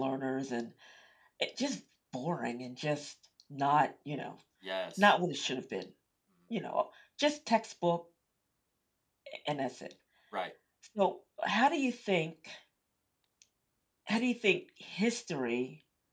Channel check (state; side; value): identical; both; correlation 1.00